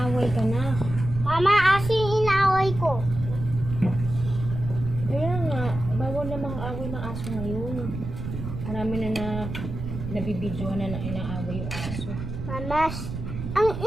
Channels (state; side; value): noise; right; rumble, 7 dB below the sound